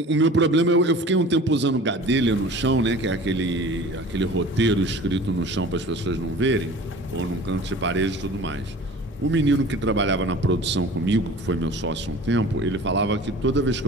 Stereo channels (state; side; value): normal; both; correlation 0.42